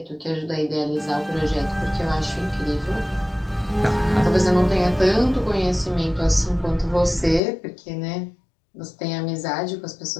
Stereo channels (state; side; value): drops out; right; at 7.4 s